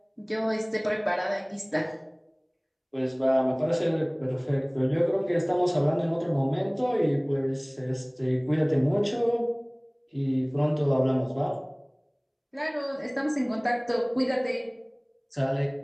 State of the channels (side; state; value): both; identical; correlation 1.00